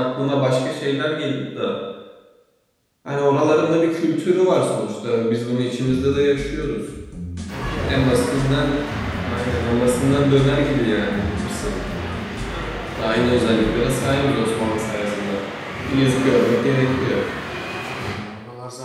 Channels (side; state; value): both; identical; correlation 1.00